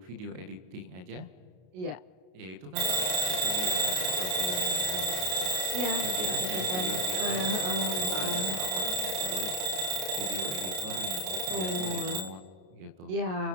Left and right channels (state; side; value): late; left; 33 ms